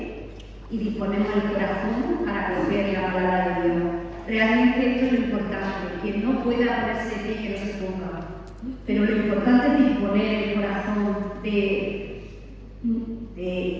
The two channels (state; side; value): identical; both; correlation 1.00